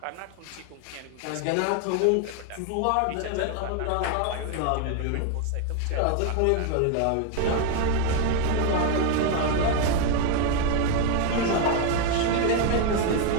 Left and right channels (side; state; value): both; different; correlation 0.01